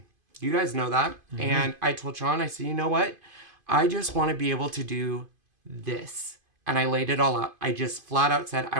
You guys know that. Mm-hmm. And I told Sean, I said, you know what? I just want to be able to do this. And I laid it all out. I just flat out said, I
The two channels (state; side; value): late; left; 2.5 ms